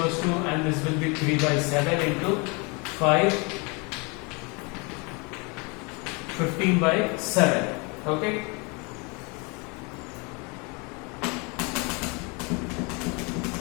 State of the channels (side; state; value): right; quieter; 30.6 dB